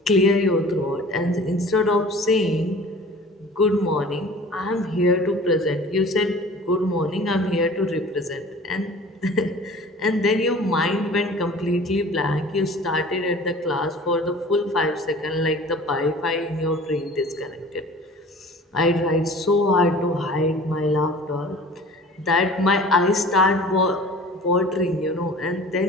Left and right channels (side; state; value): both; normal; correlation 0.44